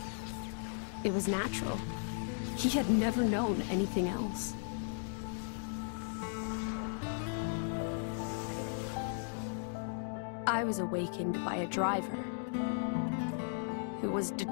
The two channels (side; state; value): right; silent; digital silence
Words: it was natural. He had never known anything else. I was awakened by a driver who was